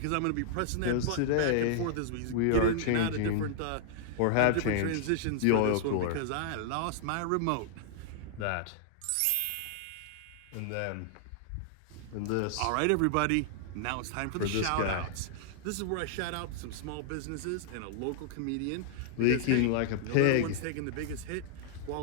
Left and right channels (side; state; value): both; different; correlation -0.01